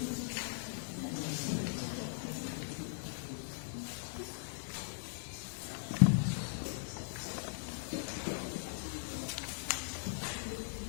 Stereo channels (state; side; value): silent; right; 51 dB below the other